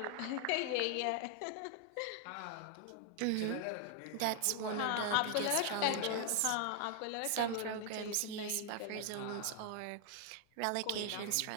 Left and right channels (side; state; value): both; different; correlation 0.00